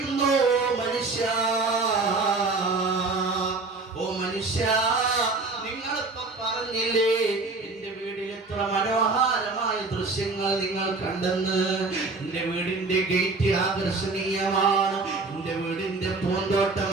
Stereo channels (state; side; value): quieter; left; 3.7 dB